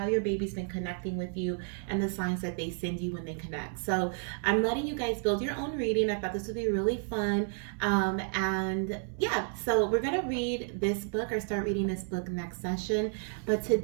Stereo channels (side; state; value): left; silent; 57 dB below the other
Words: your baby's been connecting with you, and the signs that they send you when they connect. So I'm letting you guys build your own reading. I thought this would be really fun. And yeah, so we're going to read this book or start reading this book next session. But